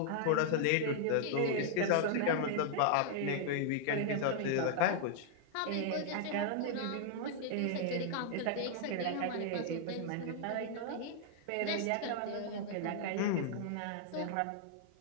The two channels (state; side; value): different; both; correlation -0.01